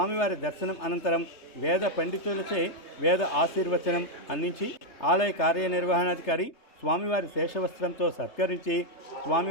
దర్శనం అనంతరం వేద పండితులచే వేద ఆశీర్వచనం అందించి ఆలయ కార్యనిర్వహణాధికారి స్వామివారి శేషవస్త్రంతో సత్కరించి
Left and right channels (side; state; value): right; late; 3.3 ms